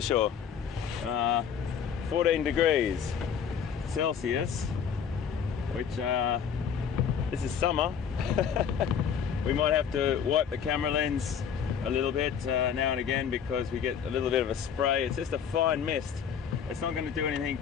sure. 14 degrees Celsius, which this is summer. We might have to wipe the camera lens a little bit now and again, because we get a little bit of a spray. It's just a fine mist. It's not going to do anything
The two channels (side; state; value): right; quieter; 7.6 dB